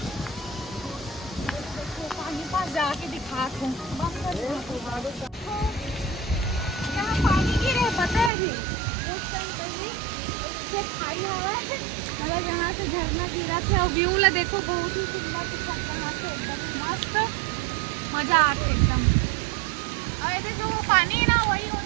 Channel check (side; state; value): left; drops out; at 8.3 s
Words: पानी पास जाके दिखात हूँ। यहाँ पानी गिरे पता है अभी कुछ टाइम पहले खाई हवा मतलब यहाँ से झरना गिरा थे और व्यू ला देखो बहुत ही सुंदर दिखा यहाँ से एकदम मस्त मजा आते एकदम। और ऐसे जो वो पानी है ना वही